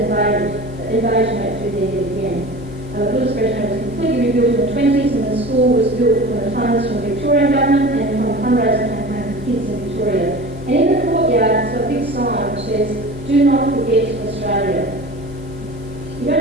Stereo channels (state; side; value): normal; both; correlation 0.36